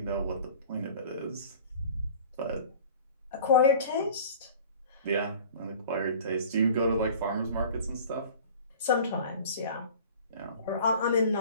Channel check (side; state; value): both; inverted; correlation -0.44